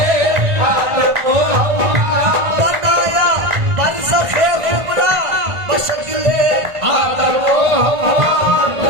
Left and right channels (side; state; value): left; late; 1.5 ms